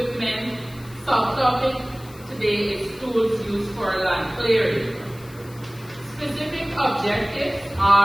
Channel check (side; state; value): left; noise; hiss, 22 dB below the sound